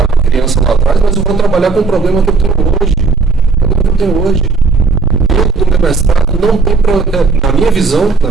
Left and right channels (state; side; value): quieter; left; 4.2 dB